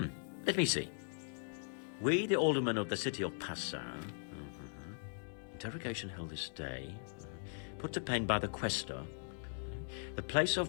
Let me see. We, the aldermen of the city of Passau, interrogation held this day, put to pen by the questor. The place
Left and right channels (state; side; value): silent; right; digital silence